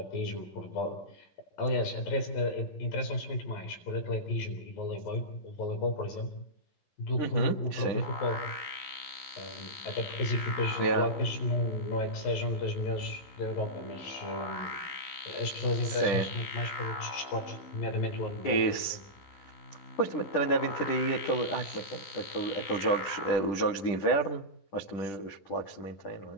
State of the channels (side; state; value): right; late; 10 ms